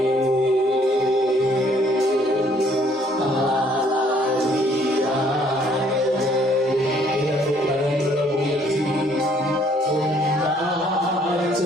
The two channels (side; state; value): both; normal; correlation 0.63